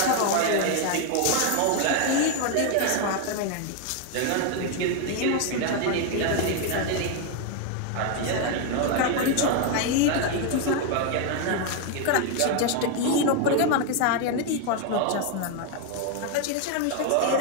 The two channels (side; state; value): both; different; correlation 0.01